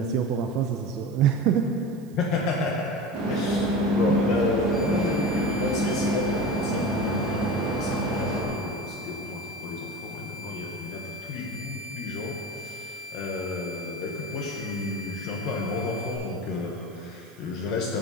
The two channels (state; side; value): noise; right; hiss, 27 dB below the sound